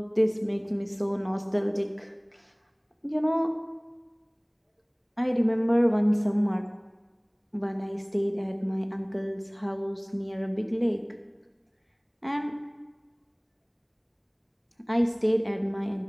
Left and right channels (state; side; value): identical; both; correlation 1.00